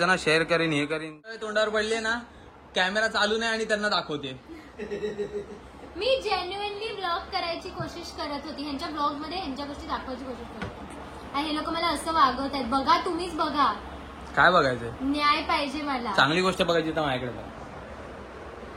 ना. शेअर करीन हे करीन. तोंडावर पडले ना कॅमेरा चालू नाही आणि त्यांना दाखवते. मी जेन्युअनली ब्लॉग करायची कोशिश करत होती. ह्यांच्या ब्लॉग मध्ये ह्यांच्या गोष्टी दाखवायची कोशिश करत होती. आणि हे लोक मला असं वागवत आहेत. बघा तुम्हीच बघा. काय बघायचंय? न्याय पाहिजे मला. चांगली गोष्ट बघायची तर माझ्याकडे बघ.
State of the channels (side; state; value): both; identical; correlation 1.00